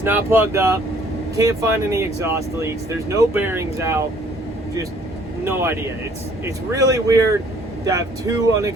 not plugged up. Can't find any exhaust leaks. There's no bearings out. Just no idea. It's really weird to have two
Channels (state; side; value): normal; both; correlation 0.59